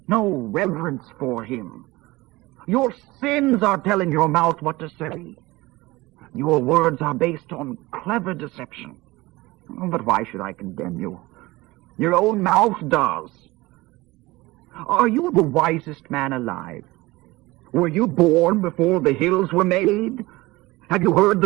no reverence for him? Your sins are telling your mouth what to say. Your words are based on clever deception. But why should I condemn you? Your own mouth does. Are you the wisest man alive? Were you born before the hills were made? Have you heard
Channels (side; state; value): left; quieter; 20.5 dB